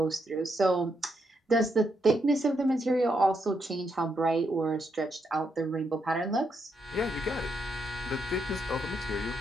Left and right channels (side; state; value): both; normal; correlation 0.79